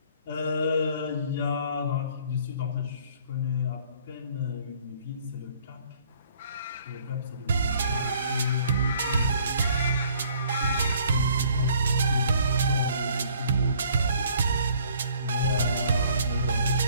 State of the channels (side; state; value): both; inverted; correlation -0.59